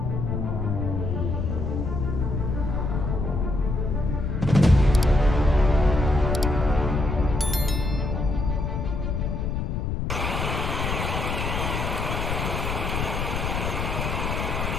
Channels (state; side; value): noise; left; rumble, 1 dB below the sound